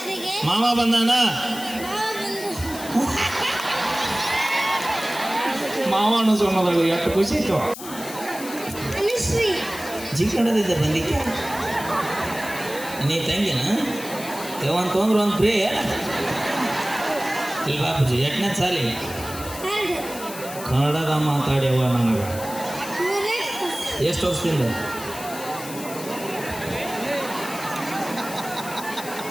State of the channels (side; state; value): left; noise; hiss, 12 dB below the sound